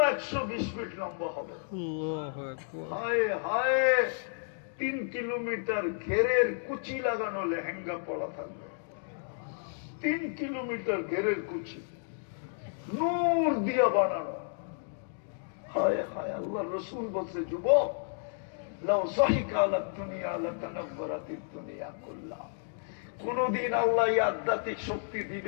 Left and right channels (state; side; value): silent; right; digital silence